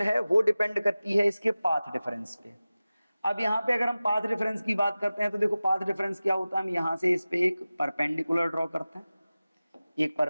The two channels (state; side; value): inverted; both; correlation -0.97